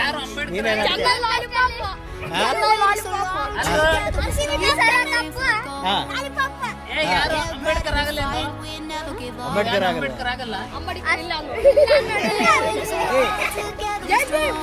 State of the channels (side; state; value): both; identical; correlation 1.00